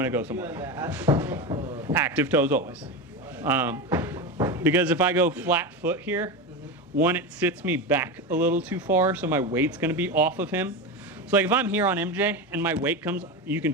to go somewhere. Active toes always. Because if I go flat foot here, one, it sits me back a little too far, so my weight's going to be off of him. So like if I'm here on MJ and my weight comes, you can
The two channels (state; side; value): normal; both; correlation 0.19